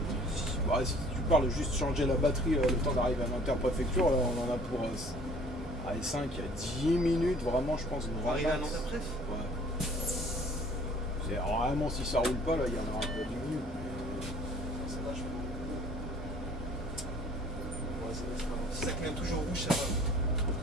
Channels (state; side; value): normal; both; correlation 0.53